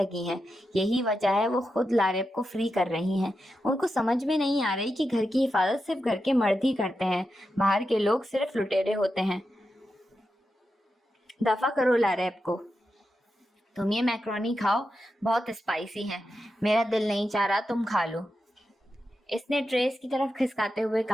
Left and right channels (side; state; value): both; normal; correlation 0.88